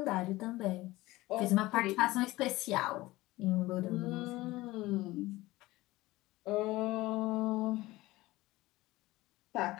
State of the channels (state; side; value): quieter; right; 18.8 dB